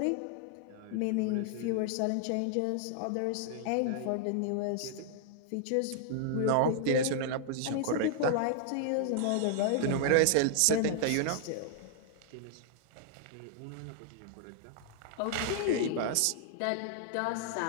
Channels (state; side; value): different; both; correlation -0.01